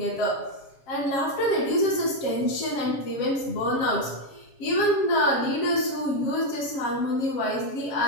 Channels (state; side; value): late; right; 7.3 ms